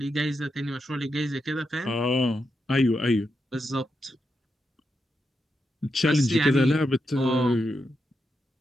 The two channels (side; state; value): both; normal; correlation 0.85